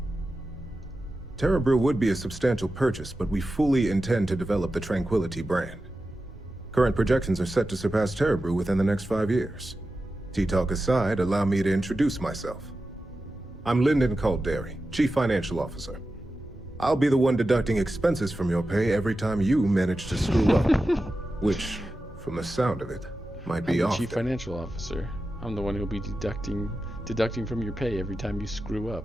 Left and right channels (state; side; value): normal; both; correlation 0.92